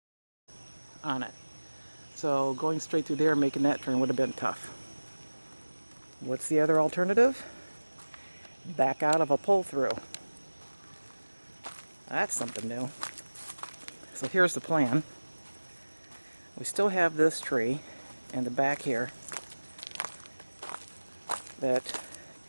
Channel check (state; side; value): inverted; both; correlation -1.00